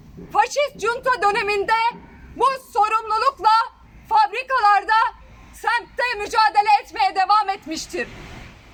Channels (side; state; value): both; identical; correlation 1.00